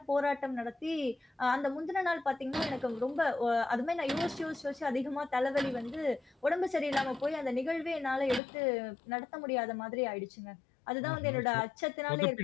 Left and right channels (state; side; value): drops out; right; at 8.4 s